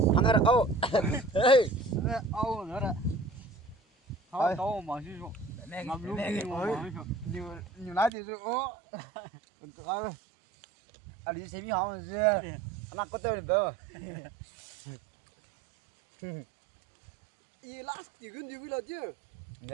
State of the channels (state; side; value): drops out; left; at 8.1 s